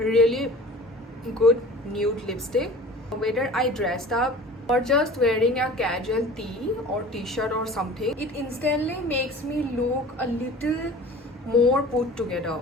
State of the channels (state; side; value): normal; both; correlation 0.42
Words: good nude lipstick. Whether I dressed up or just wearing a casual tee or t-shirt or something, it instantly makes me look a little more put together.